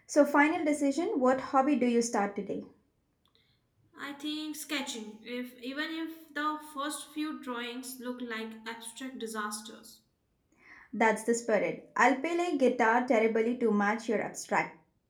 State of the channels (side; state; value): both; identical; correlation 1.00